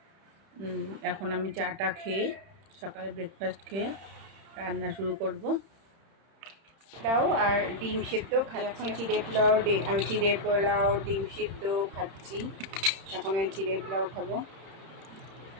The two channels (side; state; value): left; late; 31 ms